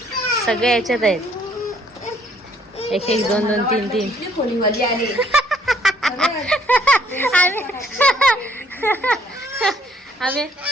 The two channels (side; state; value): both; normal; correlation 0.64